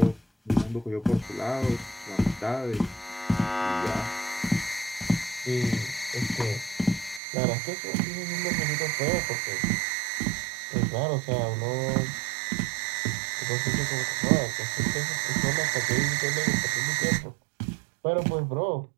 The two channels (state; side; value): drops out; left; at 7.2 s